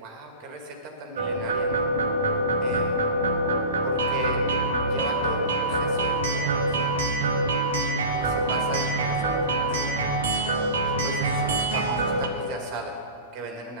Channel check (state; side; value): inverted; both; correlation -0.34